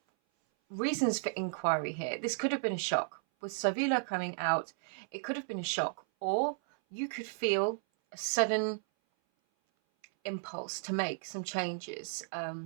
reasons for inquiry here. This could have been a shock. With Savila coming out, it could have been a shock, or you could feel a sudden impulse to make some changes,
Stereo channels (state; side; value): silent; left; 55 dB below the other